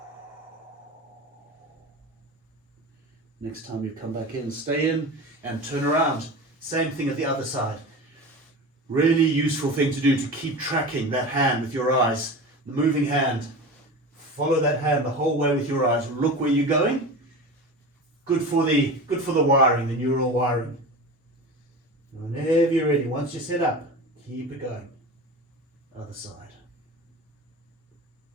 Next time you come back in, stay in and turn around. Same thing at the other side. Really useful thing to do to keep tracking that hand with your eyes. The moving hand. Follow that hand the whole way with your eyes. Look where you're going. Good for the wiring, the neural wiring. Whenever you're ready, once you're set up, keep it going. Other side.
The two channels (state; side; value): normal; both; correlation 0.30